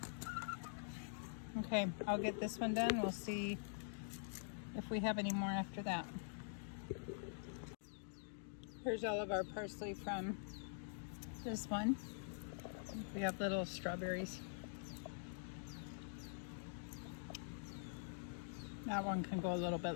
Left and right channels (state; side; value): silent; right; digital silence